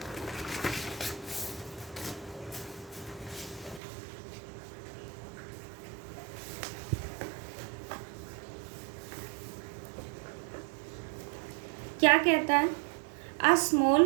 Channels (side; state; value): left; drops out; at 3.8 s